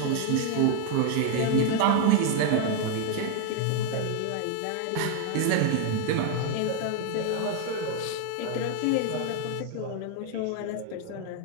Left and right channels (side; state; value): both; different; correlation 0.01